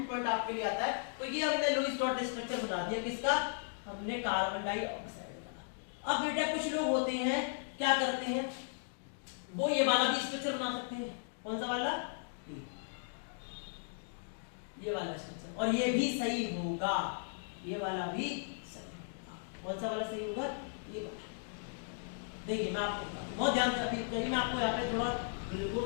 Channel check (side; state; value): right; silent; digital silence